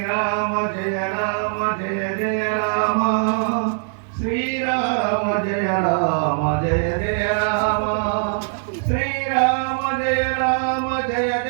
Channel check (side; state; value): left; silent; digital silence